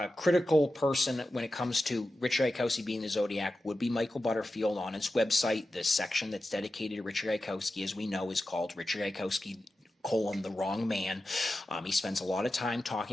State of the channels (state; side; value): normal; both; correlation 0.92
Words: person when it comes to Richard Gaikowski being the Zodiac would be Michael Butterfield. On its website, the section that's dedicated to Richard Gaikowski, as we know, is called Richard Gaikowski: the wrong man. He spends a lot of time